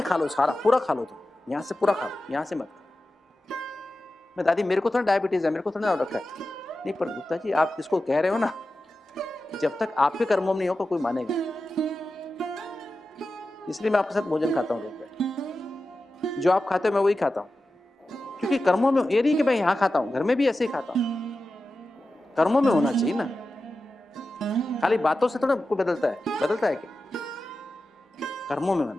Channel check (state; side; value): normal; both; correlation 0.93